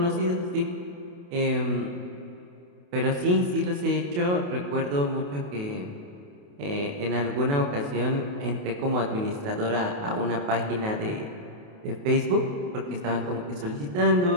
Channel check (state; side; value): late; left; 28 ms